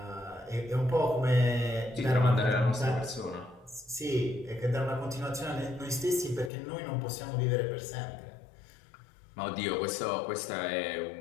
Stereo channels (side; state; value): right; drops out; at 6.5 s